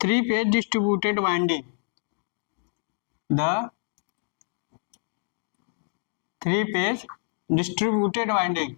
3-phase distributed winding. The 3-phase distributed winding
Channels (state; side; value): silent; right; digital silence